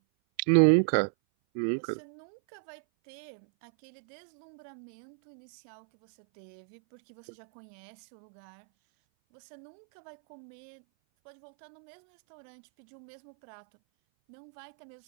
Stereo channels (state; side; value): silent; left; 55 dB below the other